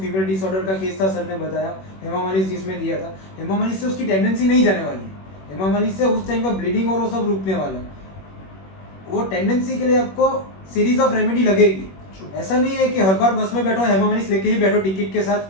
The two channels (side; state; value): right; late; 21 ms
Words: फीमेल डिसऑर्डर का केस था सर ने बताया, हेमामालिस जिसमें दिया था, हेमामालिस से उसकी टेंडेंसी नहीं जाने वाली है. हेमामालिस से उस टाइम का ब्लीडिंग और वो सब रुकने वाला है. वो टेंडेंसी के लिए आपको सीरीज ऑफ रेमेडी लगेगी. ऐसा नहीं है कि हर बार बस में बैठो हेमामालिस लेके ही बैठो टिकट के